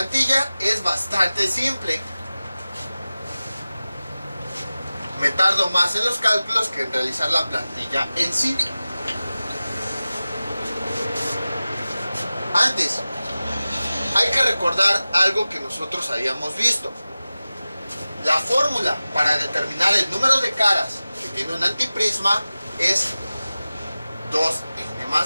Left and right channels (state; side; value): inverted; both; correlation -0.96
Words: es bastante simple. Me tardo más en los cálculos que en realizar la plantilla en sí. Antes, hay que recordar algo que nosotros habíamos visto. La fórmula para determinar el número de caras que tiene un antiprisma es 2n